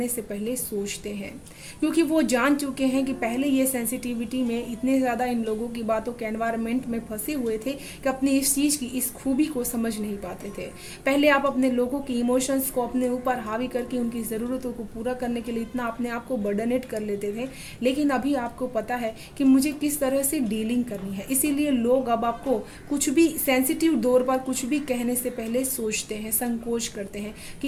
से पहले सोचते हैं, क्योंकि वो जान चुके हैं कि पहले ये सेंसिटिविटी में इतने ज़्यादा इन लोगों की बातों के एनवायरनमेंट में फंसे हुए थे कि अपनी इस चीज़ की, इस खूबी को समझ नहीं पाते थे। पहले आप अपने लोगों की इमोशंस को अपने ऊपर हावी करके उनकी ज़रूरतों को पूरा करने के लिए इतना अपने आप को बर्डनेट कर लेते थे, लेकिन अभी आपको पता है कि मुझे किस तरह से डीलिंग करनी है। इसीलिए लोग अब आपको कुछ भी सेंसिटिव दौर पर कुछ भी कहने से पहले सोचते हैं, संकोच करते हैं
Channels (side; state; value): both; identical; correlation 1.00